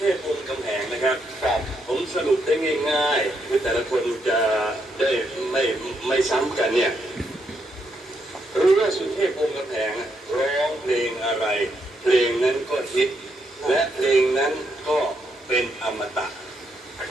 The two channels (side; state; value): both; normal; correlation 0.78